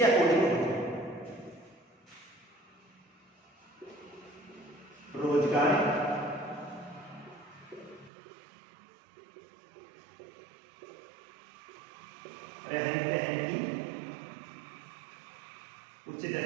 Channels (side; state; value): left; drops out; at 8.1 s